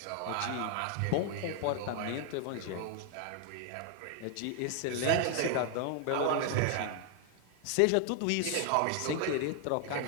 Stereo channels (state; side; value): different; both; correlation 0.00